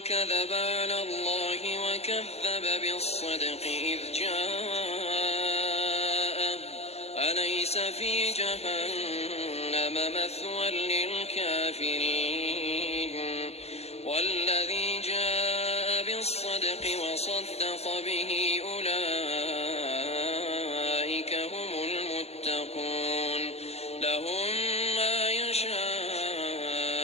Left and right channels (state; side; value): late; right; 0.30 ms